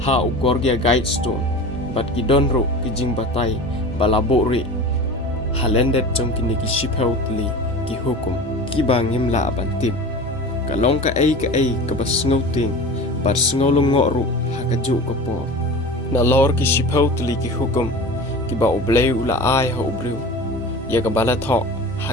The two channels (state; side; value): normal; both; correlation 0.34